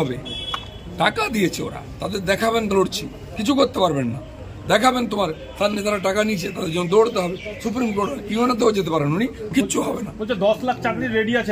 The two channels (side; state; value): both; identical; correlation 1.00